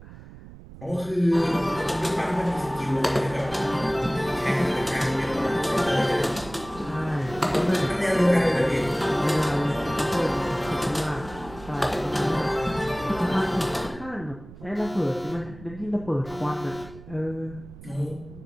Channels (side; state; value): right; noise; rumble, 17 dB below the sound